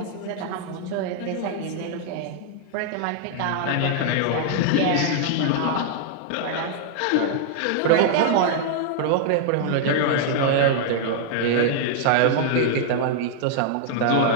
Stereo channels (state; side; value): different; both; correlation -0.01